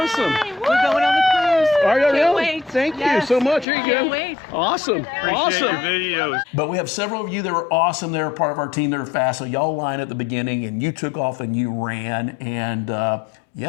We're going on the cruise. Are you Can't really? wait. Thank Yes. you so much. Here you Can't go. wait. Awesome. Appreciate Awesome. your videos. But we have several of you that were awesome. They're part of our team. They're fast. So y'all line at the beginning, and you took off and you ran. And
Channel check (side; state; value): right; drops out; at 3.7 s